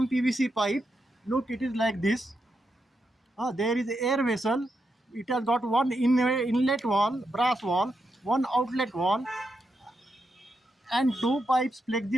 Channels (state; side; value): normal; both; correlation 0.84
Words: PVC pipe. Look, it is like this. There is air vessel. It has got one inlet wall, brass wall, one outlet wall, and two pipes,